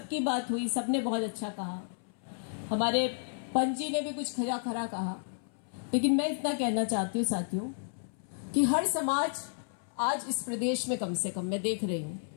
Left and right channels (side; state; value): right; silent; 57 dB below the other